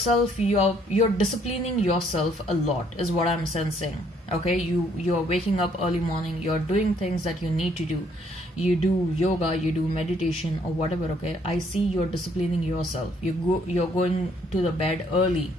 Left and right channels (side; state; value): both; normal; correlation 0.66